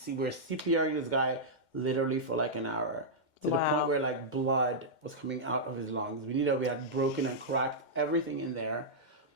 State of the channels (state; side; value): late; right; 2.1 ms